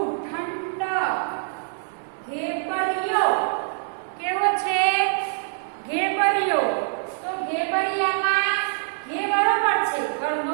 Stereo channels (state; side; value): silent; left; 62 dB below the other